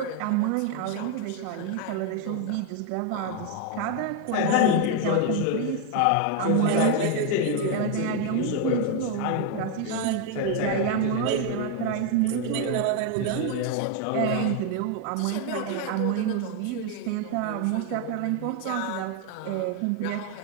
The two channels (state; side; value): different; both; correlation 0.01